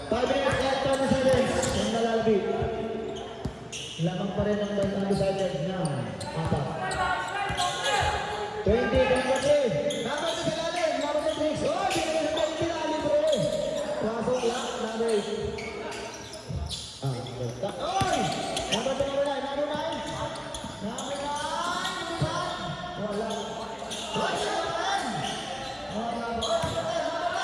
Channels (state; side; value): identical; both; correlation 1.00